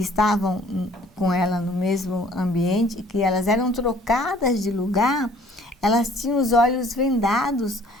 estavam com ela no mesmo ambiente, que elas eram trocadas de lugar, elas tinham os olhos vendados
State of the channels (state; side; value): normal; both; correlation 0.56